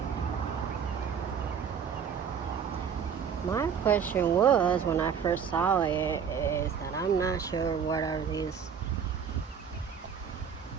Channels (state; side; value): quieter; left; 7.2 dB